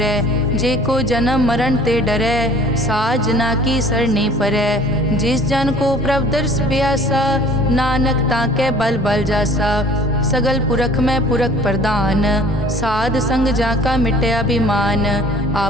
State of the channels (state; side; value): normal; both; correlation 0.50